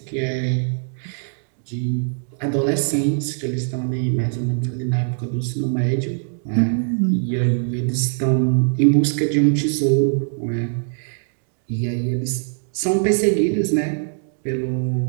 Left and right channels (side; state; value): left; silent; digital silence